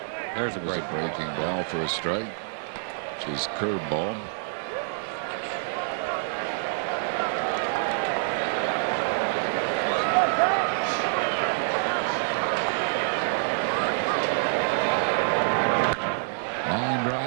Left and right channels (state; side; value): silent; left; digital silence